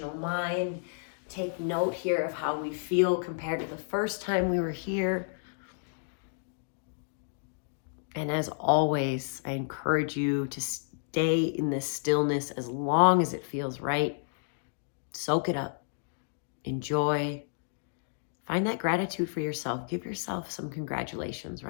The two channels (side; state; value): right; silent; digital silence